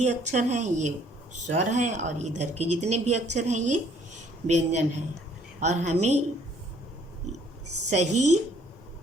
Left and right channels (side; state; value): both; normal; correlation 0.62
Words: अक्षर हैं ये स्वर हैं और इधर के जितने भी अक्षर हैं ये व्यंजन हैं, और हमें सही